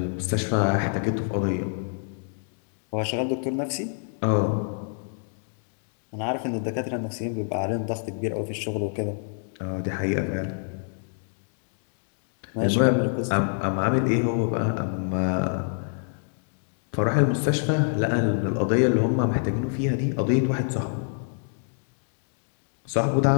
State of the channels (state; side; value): silent; right; 60 dB below the other